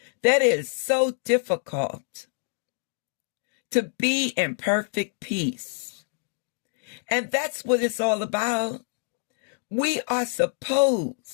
that is so difficult to be in perfect peace. And that's what it's all about. We are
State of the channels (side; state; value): right; silent; 61 dB below the other